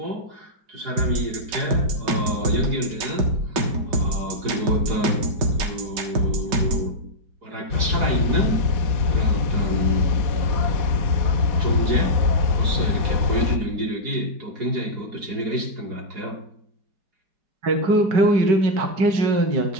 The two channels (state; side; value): late; left; 4.8 ms